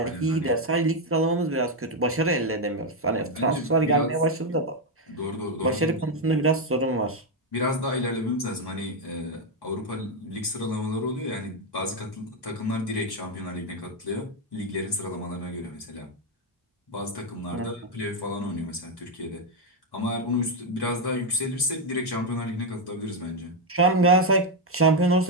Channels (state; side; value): normal; both; correlation 0.04